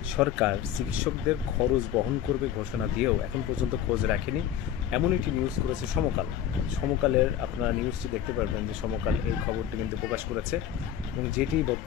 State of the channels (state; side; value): quieter; right; 10.1 dB